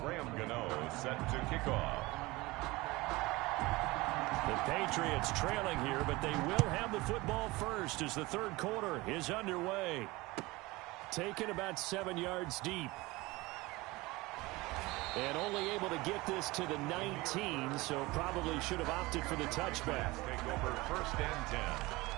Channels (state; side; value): quieter; left; 21.6 dB